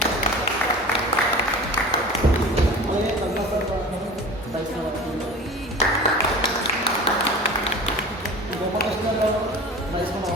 అలాగే రఘునాథ్ సార్ గోపాలకృష్ణ గారు దయచేసి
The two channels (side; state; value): both; normal; correlation 0.37